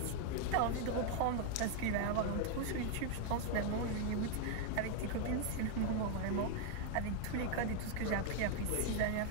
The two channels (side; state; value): both; different; correlation 0.01